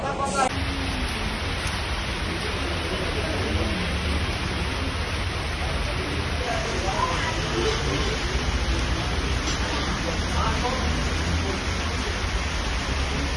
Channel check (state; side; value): identical; both; correlation 1.00